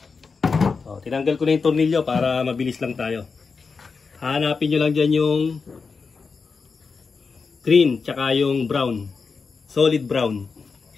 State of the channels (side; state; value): right; quieter; 4.9 dB